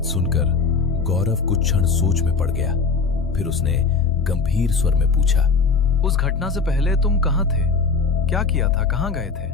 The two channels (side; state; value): right; quieter; 4.8 dB